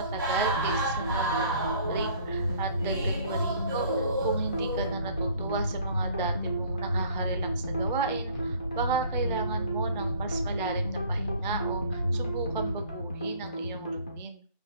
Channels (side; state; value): both; inverted; correlation -0.54